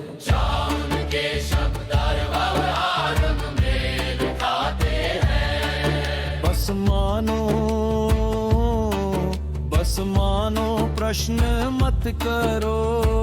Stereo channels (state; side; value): identical; both; correlation 1.00